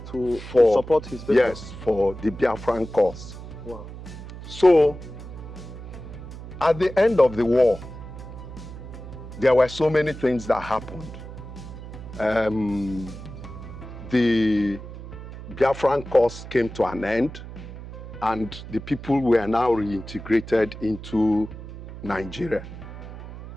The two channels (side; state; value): right; noise; hum, 12 dB below the sound